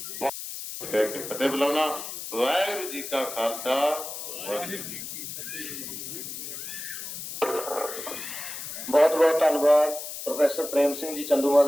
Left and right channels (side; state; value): left; noise; hiss, 8 dB below the sound